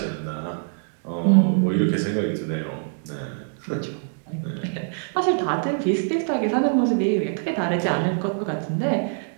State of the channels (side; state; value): left; silent; digital silence